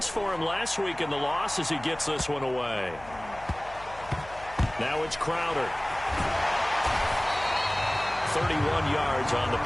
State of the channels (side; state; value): left; noise; hum, 19 dB below the sound